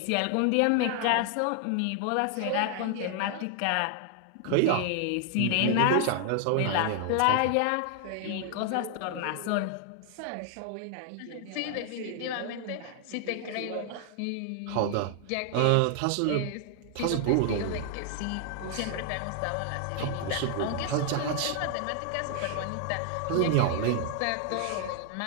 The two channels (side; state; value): both; different; correlation 0.00